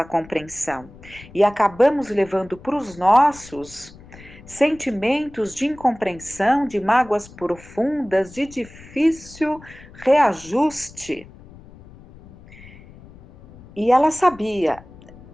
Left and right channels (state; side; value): noise; left; rumble, 21 dB below the sound